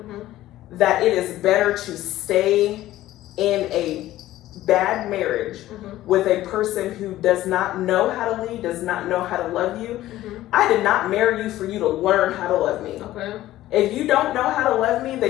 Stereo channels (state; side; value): quieter; right; 14.9 dB